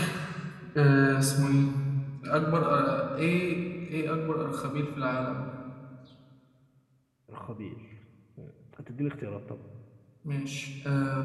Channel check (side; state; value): both; identical; correlation 1.00